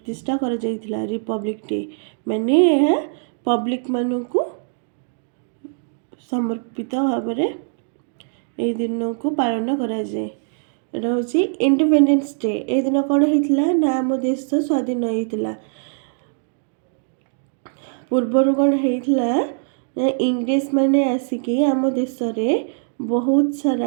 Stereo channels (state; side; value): silent; left; digital silence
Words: କରାଯାଇଥିଲା। ରିପବ୍ଲିକ୍ ଡେ ମାନେ ଏହା ପବ୍ଲିକ୍ ମାନଙ୍କୁ ସମର୍ପିତ ଭାବରେ ଏହି ଦିନକୁ ପାଳନ କରାଯାଏ। ଏଇଟା ହେଉଛି ଇଣ୍ଡିପେଣ୍ଡେନ୍ସ ଡେ। ଏହି ଦିନ କ'ଣ ହେଇଥିଲା ନା ଆମ ଦେଶ ସ୍ୱାଧୀନ ହେଇଥିଲା। ପୂର୍ବରୁ କ'ଣ ହେଇଥିଲା ନା ଇଂରେଜମାନେ ଆସିକି ଆମ ଦେଶରେ ବହୁତ